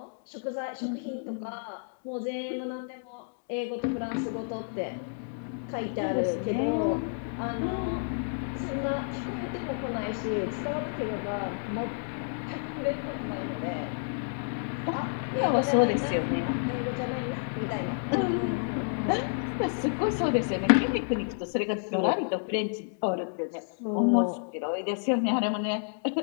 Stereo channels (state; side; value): silent; right; digital silence